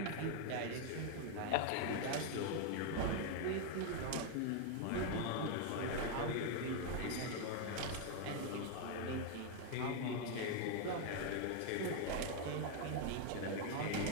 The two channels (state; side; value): different; both; correlation 0.01